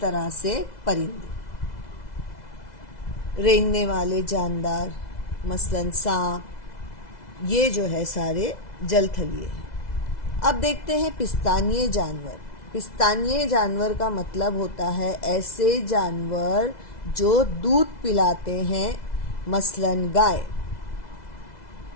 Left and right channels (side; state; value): right; late; 2.0 ms